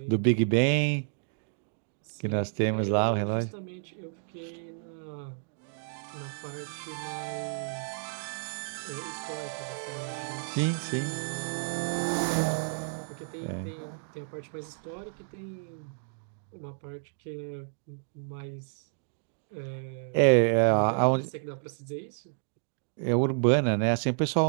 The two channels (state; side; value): silent; left; digital silence